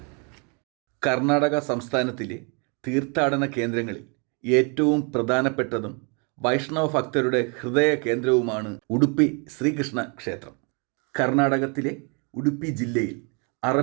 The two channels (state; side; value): quieter; left; 34.9 dB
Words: കർണാടക സംസ്ഥാനത്തിലെ തീർത്ഥാടന കേന്ദ്രങ്ങളിൽ ഏറ്റവും പ്രധാനപ്പെട്ടതും വൈഷ്ണവ ഭക്തരുടെ ഹൃദയ കേന്ദ്രവുമാണ് ഉടുപ്പി ശ്രീകൃഷ്ണ ക്ഷേത്രം. കർണാടകത്തിലെ ഉടുപ്പി ജില്ലയിൽ